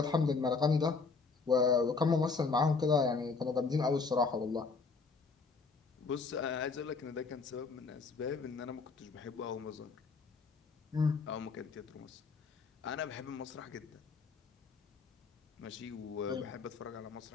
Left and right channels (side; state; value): right; quieter; 4.6 dB